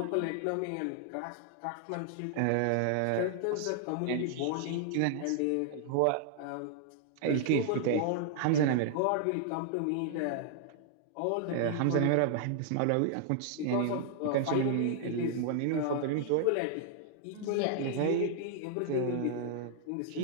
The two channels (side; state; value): both; different; correlation -0.01